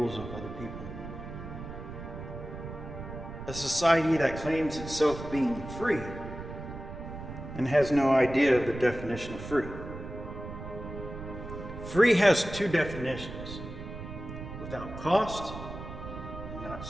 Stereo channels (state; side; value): noise; right; rumble, 10 dB below the sound